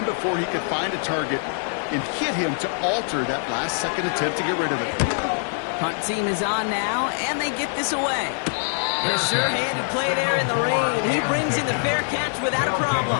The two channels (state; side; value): silent; right; 58 dB below the other